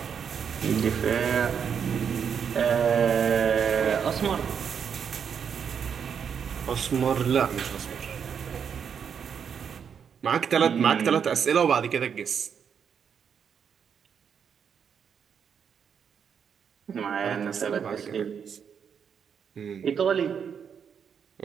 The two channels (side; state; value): left; quieter; 7.3 dB